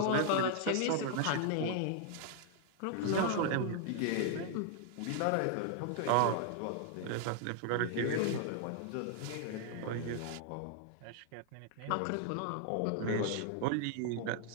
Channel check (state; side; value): different; both; correlation 0.00